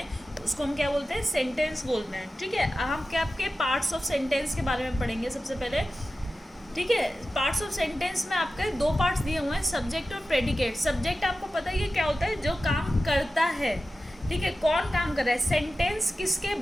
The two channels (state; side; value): normal; both; correlation 0.94